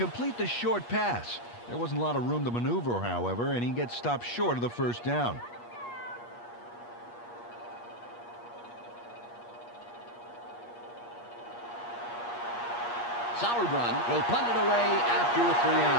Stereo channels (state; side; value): late; right; 8.4 ms